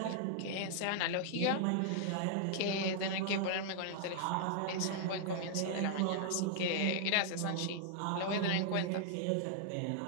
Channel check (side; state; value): both; different; correlation -0.01